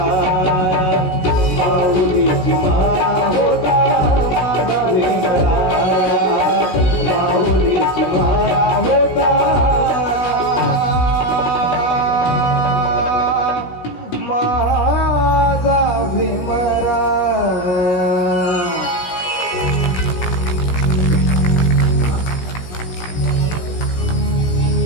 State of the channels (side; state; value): right; late; 16 ms